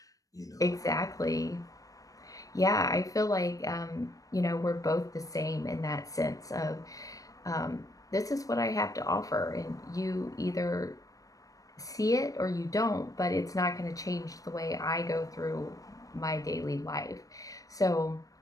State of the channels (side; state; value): right; late; 0.17 ms